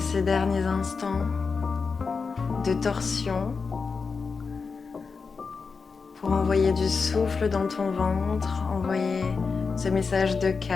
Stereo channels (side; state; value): right; quieter; 5.0 dB